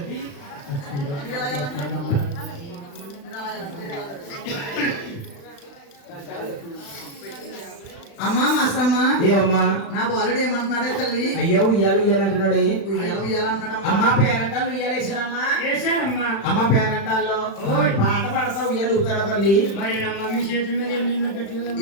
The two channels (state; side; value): late; right; 35 ms